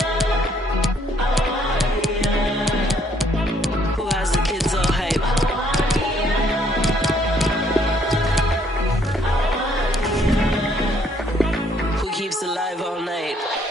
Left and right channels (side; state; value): both; normal; correlation 0.67